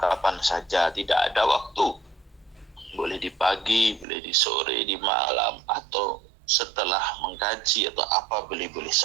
saja, tidak ada waktu. Boleh di pagi, boleh di sore, di malam, atau setelah mengkaji atau apa, boleh-boleh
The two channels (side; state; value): left; drops out; at 4.0 s